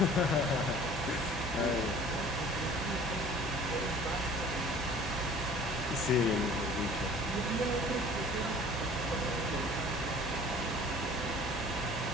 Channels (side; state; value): both; normal; correlation 0.48